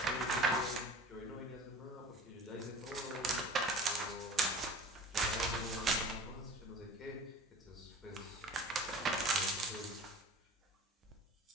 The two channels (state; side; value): normal; both; correlation 0.40